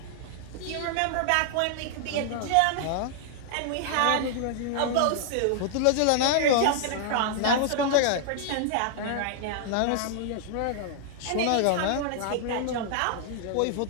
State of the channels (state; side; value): different; both; correlation -0.01